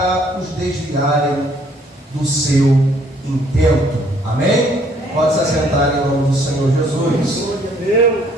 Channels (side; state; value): both; normal; correlation 0.63